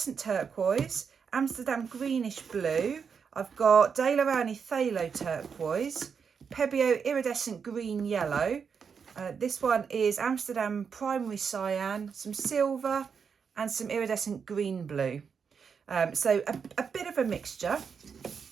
turquoise, Amsterdam greenish blue, I've got De La Rani phthalo turquoise, Pebbio iridescent green yellow, this one is Amsterdam primary cyan, some silver and some iridescent green blue. So a bit of a mixture.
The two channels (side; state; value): left; quieter; 6.3 dB